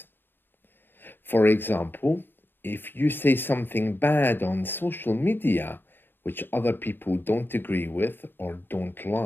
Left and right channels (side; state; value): right; late; 0.099 ms